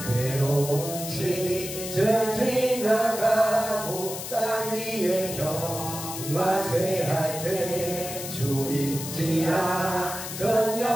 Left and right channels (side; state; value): left; noise; hiss, 8 dB below the sound